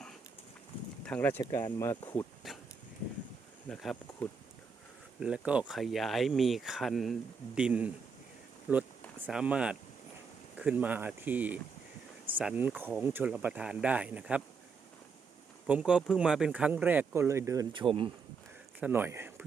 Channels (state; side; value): quieter; left; 5.3 dB